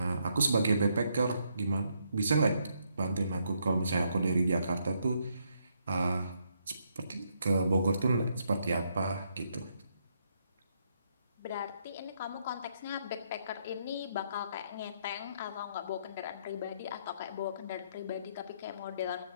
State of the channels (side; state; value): both; inverted; correlation -0.75